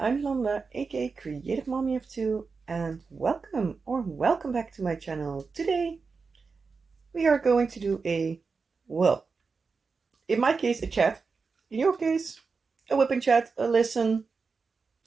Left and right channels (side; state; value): left; quieter; 4.8 dB